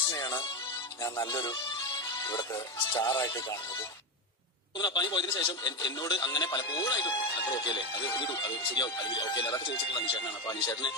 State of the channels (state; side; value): normal; both; correlation 0.13